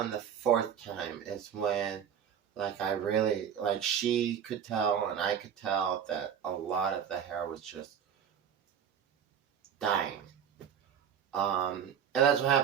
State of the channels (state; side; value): quieter; left; 8.4 dB